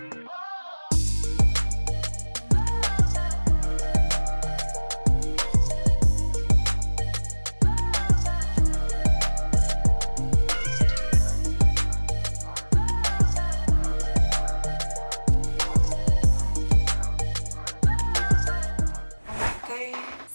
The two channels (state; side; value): inverted; both; correlation -1.00